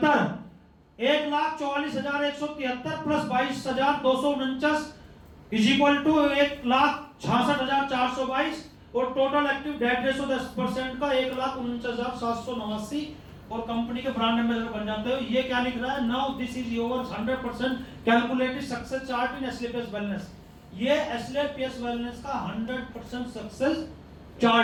1,44,173 प्लस 22,249 इज इक्वल टू 1,66,422 और टोटल एक्टिव डेट रेशो 10% का 1,49,789 और कंपनी के ब्रांड एम्बेसडर बन जाते हो। ये क्या लिख रहा है? Now this is your 100% calculated success chart in SLPS wellness. ये एसएलपीएस वेलनेस का 100% सक्सेस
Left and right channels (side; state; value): both; identical; correlation 1.00